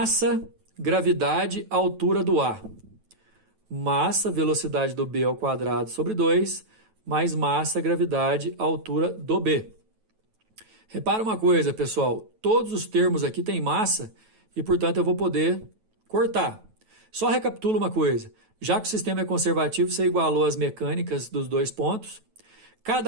gravidade, altura do A. Massa, velocidade do B ao quadrado sobre 2, mais massa, gravidade, altura do B. Repara uma coisa, pessoal. Todos os termos aqui têm massa e, portanto, eu vou poder cortar. Só recapitula uma coisa. Já que o sistema é conservativo, você igualou as mecânicas dos 2 pontos.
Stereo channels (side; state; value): left; late; 9.2 ms